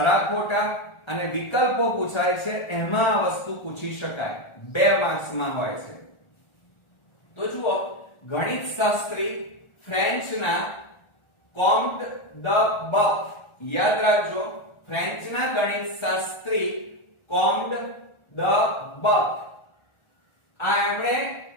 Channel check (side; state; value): right; late; 1.4 ms